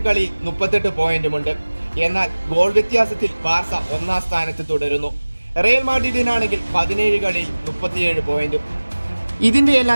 കളിയിൽ 38 പോയിന്റുമുണ്ട്. എന്നാൽ ഗോൾ വ്യത്യാസത്തിൽ ബാർസ ഒന്നാം സ്ഥാനത്ത് തുടരുന്നു. റയൽ മാഡ്രിഡിനാണെങ്കിൽ 17 കളിയിൽ 37 പോയിന്റും. ഇതിന്റെ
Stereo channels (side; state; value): both; inverted; correlation -1.00